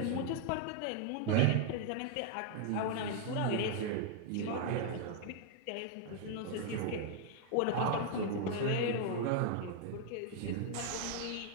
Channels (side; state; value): both; different; correlation 0.00